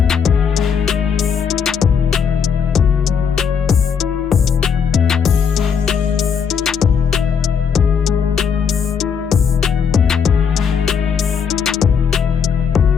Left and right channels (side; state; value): right; quieter; 6.8 dB